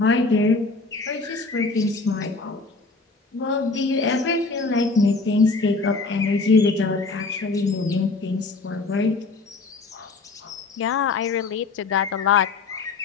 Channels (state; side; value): quieter; right; 3.8 dB